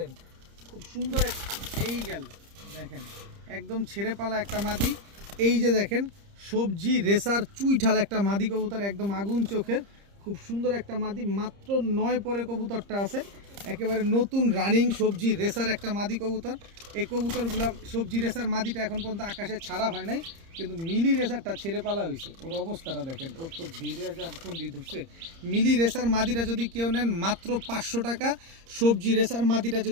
খুব সুন্দর এই গেল দেখেন, একদম ছেড়ে পালা একটা মাদি। এই যে দেখেন সবজি রেসার চুইঠাল একটা মাদি কবুতর, একদম আগুন চোখের, খুব সুন্দর একটা মাদি। মাত্র 9 পরে কবুতরটা আছে, একেবারে নতুন রানিং সবজি রেসার একটা মাদি কবুতর। এই কবুতরগুলো সবজি রেসার মাদিটা এখন পর্যন্ত আকাশে ছাড়া হয় নাই, কিন্তু মিলি রেসারটা ছেড়ে পালা হয়েছে। ওর অবস্থাটা দেখেন, ওর তো ধীরে ফোন দিয়ে ধরছে। মিলি রেসার মাদিটা যদি কেউ নেন মাত্র 500 টাকা, সবজি রেসার মাদিটা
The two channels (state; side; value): late; left; 30 ms